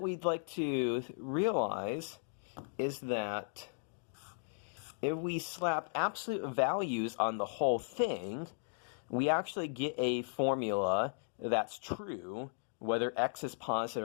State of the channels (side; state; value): right; silent; digital silence